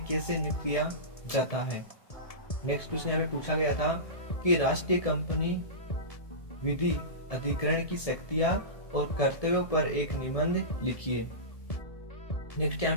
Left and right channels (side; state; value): right; late; 1.7 ms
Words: कैसे नियुक्त किया जाता है। नेक्स्ट क्वेश्चन यहाँ पे पूछा गया था कि राष्ट्रीय कंपनी विधि अधिकरण की शक्तियां और कर्तव्यों पर एक निबंध लिखिए। नेक्स्ट यहाँ